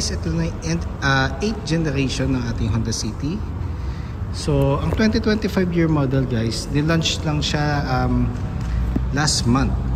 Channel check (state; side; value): identical; both; correlation 1.00